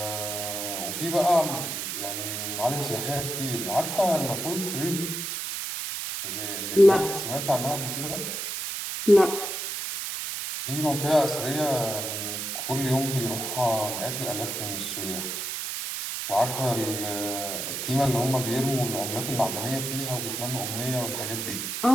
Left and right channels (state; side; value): noise; right; hiss, 4 dB below the sound